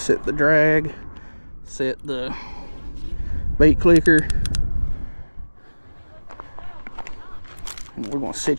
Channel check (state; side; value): inverted; both; correlation -1.00